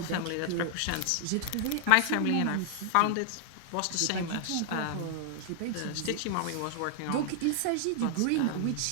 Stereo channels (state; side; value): different; both; correlation -0.01